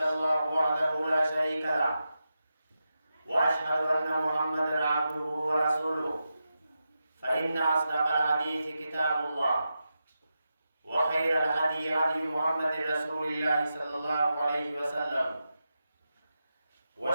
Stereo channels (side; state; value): both; inverted; correlation -0.89